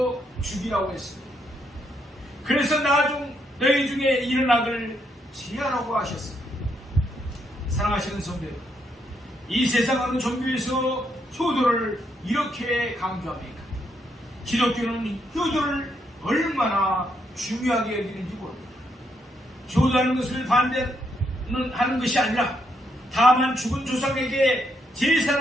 죽이라고 했습니다. 그래서 나중 너희 중에 이런 악을 지하라고 하셨습니다. 사랑하시는 성도 여러분, 이 세상 어느 종교에서 효도를 이렇게 강조합니까? 기독교는 효도를 얼마나 중요하게 여기는지 모릅니다. 효도하는 것을 반대하는 것이 아니라 다만 죽은 조상에게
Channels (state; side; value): normal; both; correlation 0.77